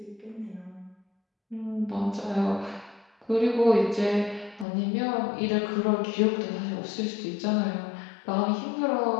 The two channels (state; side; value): drops out; right; at 4.7 s